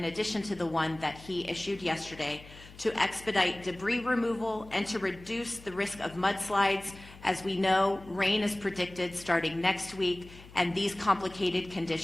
addition to the one that he issued yesterday to expedite debris removal and to reduce the risk of mudslides. As we know, rain is predicted starting next week, and these complicated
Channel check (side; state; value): left; noise; hum, 19 dB below the sound